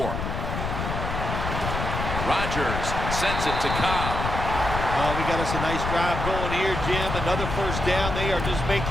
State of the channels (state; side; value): noise; left; rumble, 4 dB below the sound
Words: Rodgers sends it to Cobb. Oh, we got us a nice drive going here, Jim. Another first down. They are just